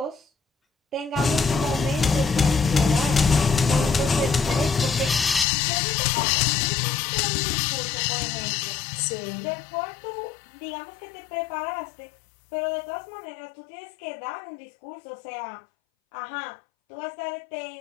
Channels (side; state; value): right; drops out; at 5.5 s